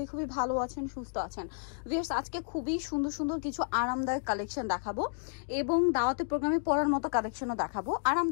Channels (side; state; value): right; silent; digital silence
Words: খুবই ভালো আছেন, সুস্থ আছেন। ভিউয়ার্স, আজকে খুবই সুন্দর সুন্দর কিছু আরামদায়ক কালেকশন দেখাবো এবং দাওয়াতে প্রোগ্রামে পরার মতো কালেকশনও দেখাবো।